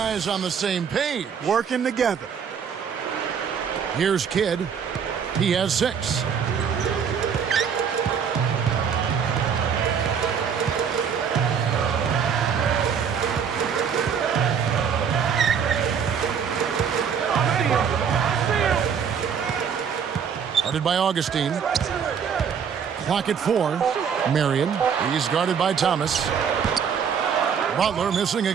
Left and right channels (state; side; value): quieter; left; 7.1 dB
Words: on the same page. Working together. Here's Kidd. He has 6. Guarded by Augustine. Clock at 4. Marion. He's guarded by Thomas. Butler missing